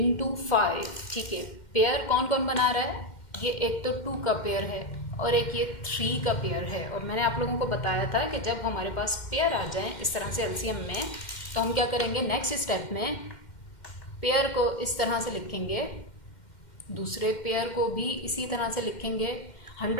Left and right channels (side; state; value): right; late; 2.1 ms